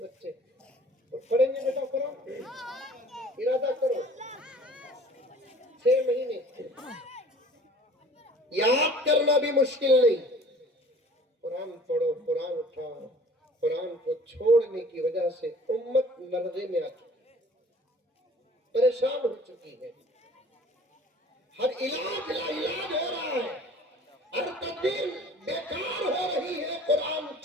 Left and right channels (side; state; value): both; normal; correlation 0.49